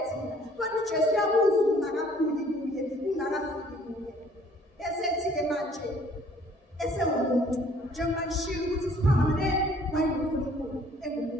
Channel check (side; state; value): both; normal; correlation 0.58